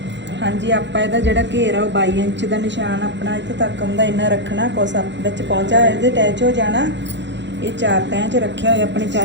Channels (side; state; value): left; late; 0.52 ms